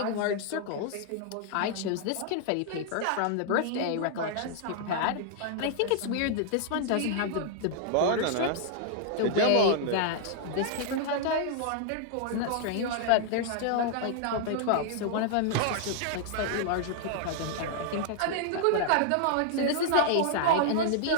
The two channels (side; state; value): both; different; correlation -0.01